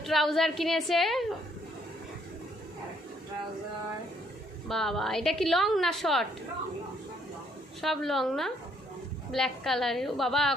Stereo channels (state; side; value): normal; both; correlation 0.68